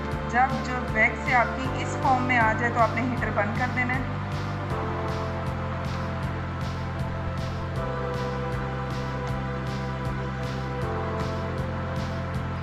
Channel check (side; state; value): both; identical; correlation 1.00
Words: जब जो वैक्स से आपकी इस फॉर्म में आ जाए तो आपने हीटर बंद कर देना है।